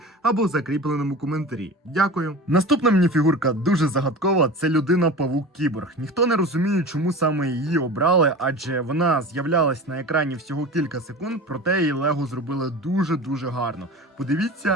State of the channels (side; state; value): both; normal; correlation 0.33